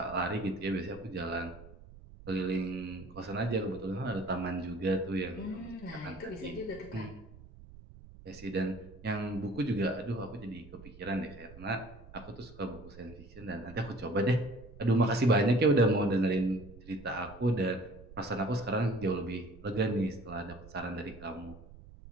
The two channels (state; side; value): noise; right; rumble, 18 dB below the sound